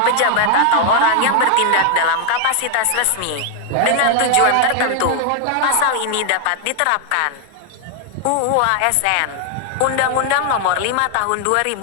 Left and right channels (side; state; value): both; different; correlation 0.00